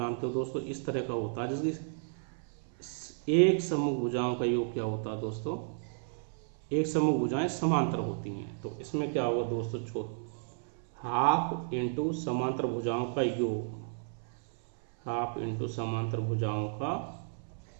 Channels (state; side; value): silent; left; 56 dB below the other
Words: हो दोस्तों इस तरह का होता है, जिसकी एक समूह भुजाओं का योग क्या होता है दोस्तों, एक समूह भुजाएं समांतर होती हैं। तो इसमें क्या होगा दोस्तों, हाफ इंटू समांतर भुजाओं का योग, हाफ इंटू समांतर भुजाओं का